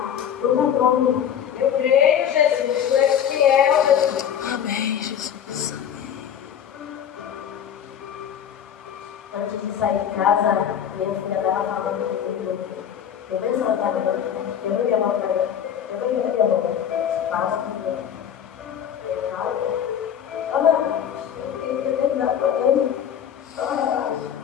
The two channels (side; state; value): right; quieter; 9.1 dB